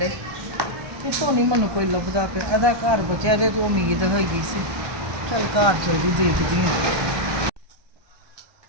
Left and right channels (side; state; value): left; late; 1.2 ms